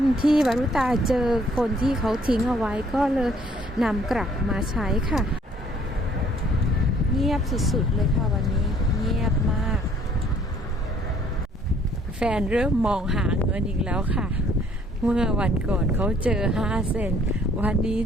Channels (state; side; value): normal; both; correlation 0.61